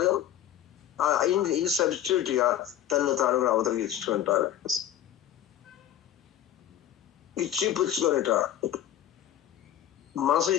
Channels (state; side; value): quieter; right; 11.2 dB